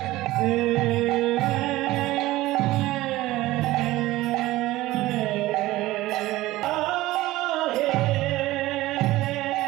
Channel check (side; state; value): left; quieter; 17.4 dB